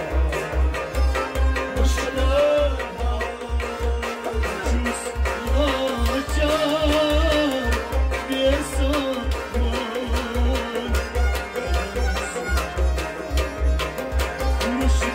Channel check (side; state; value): both; identical; correlation 1.00